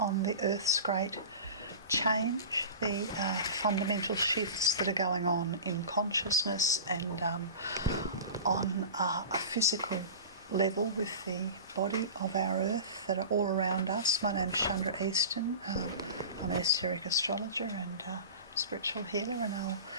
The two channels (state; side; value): inverted; both; correlation -0.34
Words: on the Earth's great change, the fundamental shifts that are going on in consciousness and on a physical level with the body of our Earth that are all around us. My name's Chandra Easton. I'm an esoteric astrologer and spiritual healer, and I'll